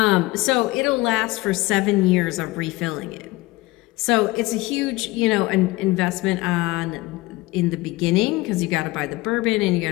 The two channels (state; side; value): quieter; right; 20.6 dB